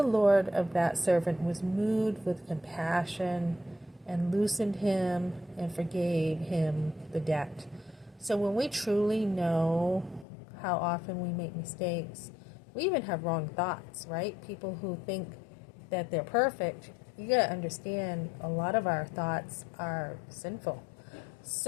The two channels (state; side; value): drops out; right; at 10.2 s